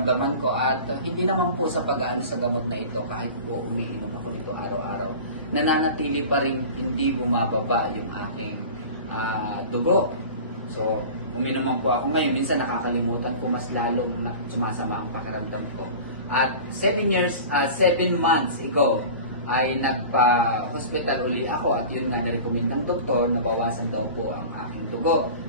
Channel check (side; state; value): both; inverted; correlation -0.37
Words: ko at hindi naman po sa pag-aano sa gamot na ito kahit po umiinom ako nito araw-araw. Nananatili pa rin hindi bumababa yung aking dugo. So, uminom po ako ngayon. Minsan nakakalimutan ko mas lalong sumasama ang pakiramdam ko. At 7 months ago, ay nagpa-hospital uli ako at yun nga na-recommend ng doktor na bawasan daw po ang aking dugo.